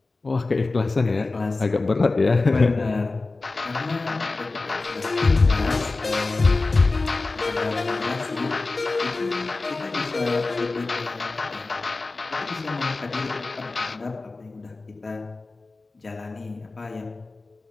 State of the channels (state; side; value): quieter; right; 3.5 dB